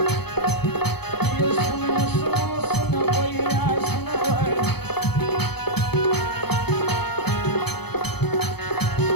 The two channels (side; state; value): right; late; 0.97 ms